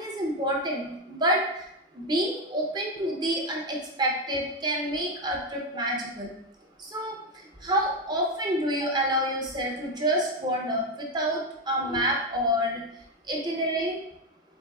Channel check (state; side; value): normal; both; correlation 0.09